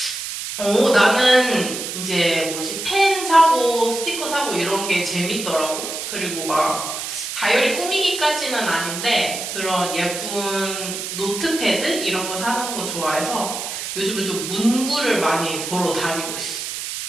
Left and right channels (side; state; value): right; noise; hiss, 6 dB below the sound